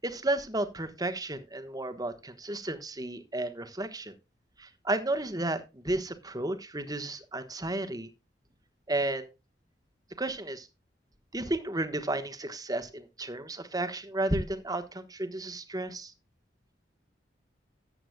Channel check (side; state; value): both; normal; correlation 0.56